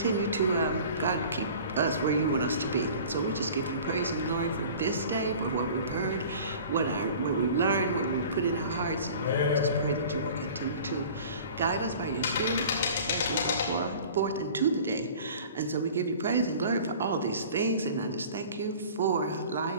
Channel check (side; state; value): both; inverted; correlation -0.44